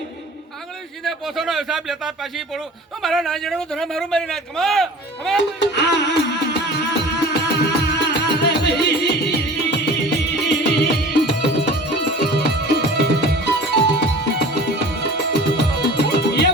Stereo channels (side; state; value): both; normal; correlation 0.41